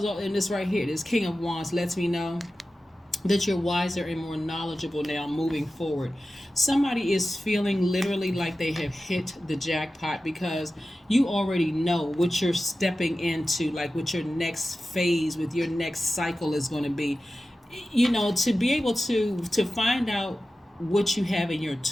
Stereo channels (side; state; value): both; normal; correlation 0.94